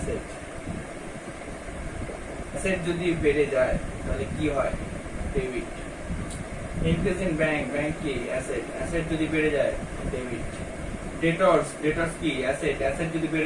অ্যাসেট যদি বেড়ে যায় তাহলে কি হয়? Debit. Increase in bank, bank কি? অ্যাসেট। অ্যাসেট যদি বেড়ে যায় ডেবিট। ডেটর্স, ডেটর্স কি? অ্যাসেট। অ্যাসেট যদি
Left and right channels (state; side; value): identical; both; correlation 1.00